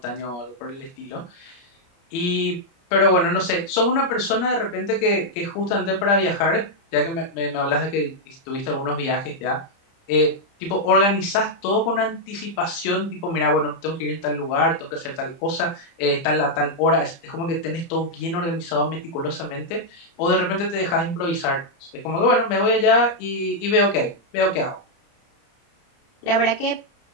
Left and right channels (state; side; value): late; right; 30 ms